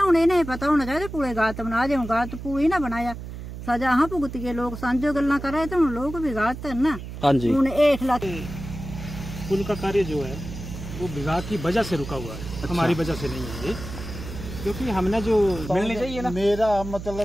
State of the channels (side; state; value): right; noise; hum, 10 dB below the sound